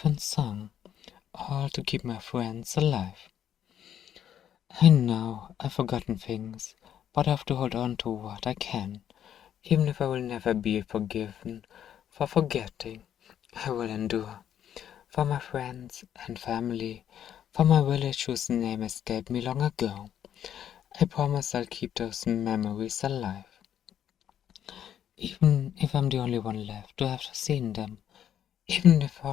song, all to keep my friends alive. I know I've forgotten things, but I have to hold on to what I can. Even if I will never be forgiven for forgetting, I will endure. For my friends and family, for my village whose name escaped me long ago, I promise I'll keep those memories alive. Even if I'm the only one left to have seen them, even if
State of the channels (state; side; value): quieter; right; 9.9 dB